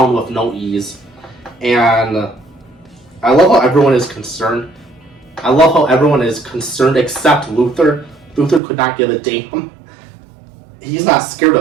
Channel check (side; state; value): left; drops out; at 8.6 s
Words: with no ease. And I love how everyone is concerned. I love how everyone is concerned except Luthor. Luthor could not give a damn. He's not scared